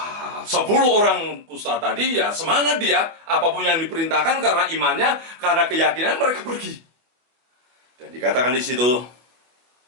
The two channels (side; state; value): left; late; 24 ms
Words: 10 orang kusta tadi ya semangat dia. Apapun yang diperintahkan karena imannya, karena keyakinan mereka pergi. Dan dikatakan di situ,